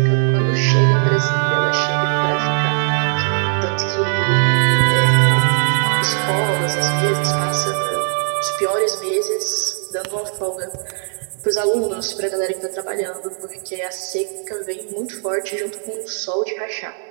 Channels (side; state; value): left; silent; 66 dB below the other